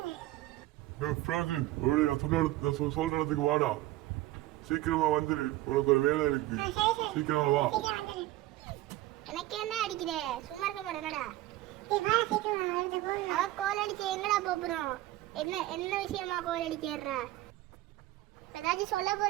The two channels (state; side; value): quieter; left; 16.5 dB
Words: சொல்ற இடத்துக்கு வாடா, சீக்கிரமா வந்துரு, உனக்கு ஒரு வேலை இருக்கு, சீக்கிரமா வா. எனக்கு என்ன அடிக்கிற, சும்மா இருக்க மாட்டேனடா. அவ கோல் அடிச்சு எங்கடா போறோம்? என்ன என்ன விஷயமா கோல் அடிக்கிறா? ஏதாச்சும் சொல்ல